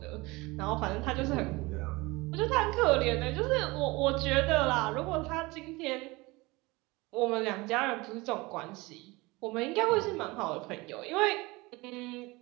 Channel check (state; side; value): quieter; left; 23.0 dB